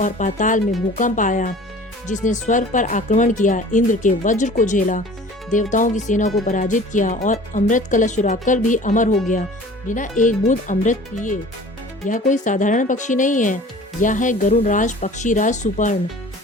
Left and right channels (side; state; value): both; normal; correlation 0.45